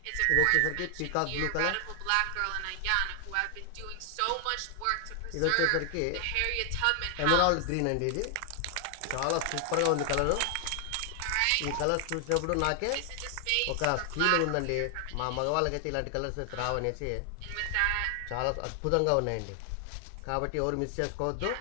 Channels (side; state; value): both; different; correlation 0.00